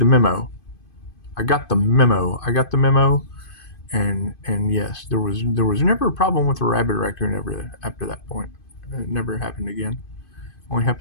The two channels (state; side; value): late; right; 2.5 ms